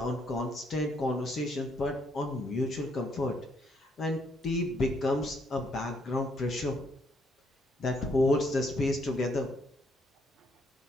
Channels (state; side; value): normal; both; correlation 0.71